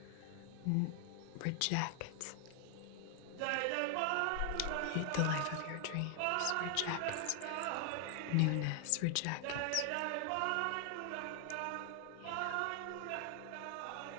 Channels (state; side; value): different; both; correlation 0.00